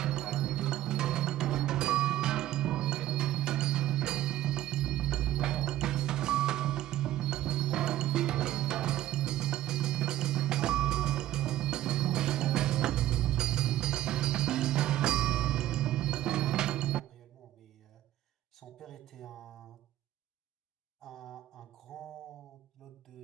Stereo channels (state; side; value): quieter; left; 13.7 dB